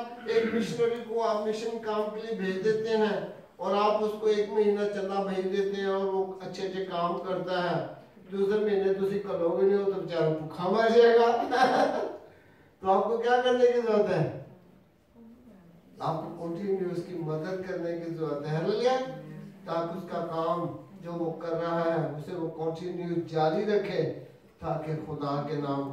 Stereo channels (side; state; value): both; identical; correlation 1.00